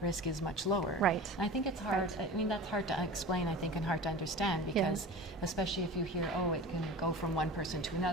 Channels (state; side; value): normal; both; correlation 0.35